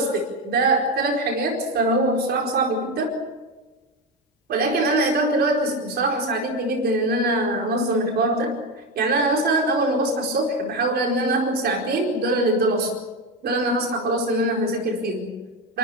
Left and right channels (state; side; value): normal; both; correlation 0.14